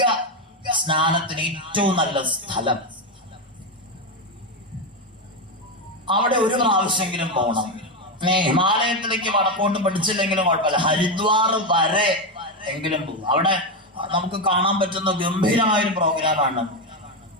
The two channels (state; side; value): normal; both; correlation 0.10